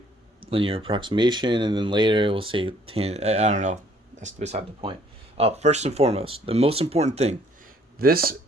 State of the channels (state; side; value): normal; both; correlation 0.61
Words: linear approximation and then later it will say I don't know. That's beside the point. First and foremost, the most important thing, this